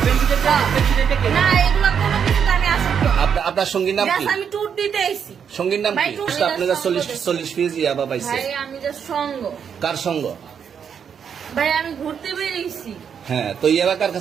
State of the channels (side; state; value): left; quieter; 7.5 dB